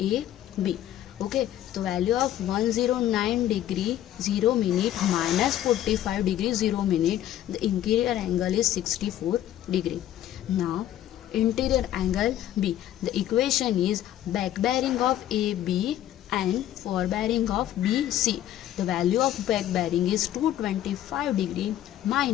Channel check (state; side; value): quieter; right; 12.3 dB